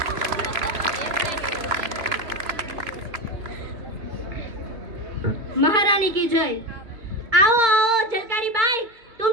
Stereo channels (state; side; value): late; left; 2.2 ms